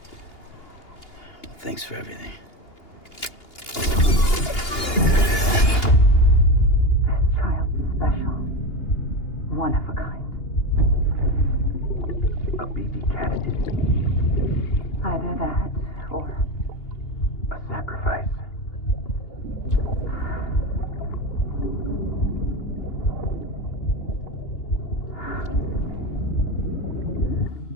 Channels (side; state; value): right; late; 2.8 ms